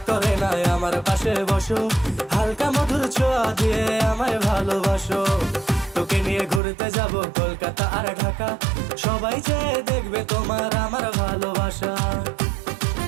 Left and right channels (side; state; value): left; drops out; at 6.6 s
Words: করে না আমার পাশে বসো, হালকা মধুর ছোঁয়া দিয়ে আমায় ভালোবাসো। তোকে নিয়ে ঘুরতে যাব কলকাতা আর ঢাকা, সবাই যে দেখবে তোমার আমার ভালোবাসা।